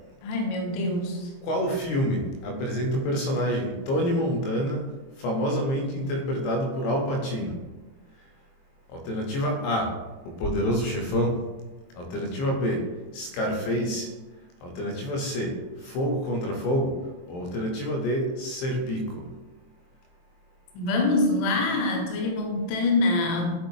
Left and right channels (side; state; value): right; late; 23 ms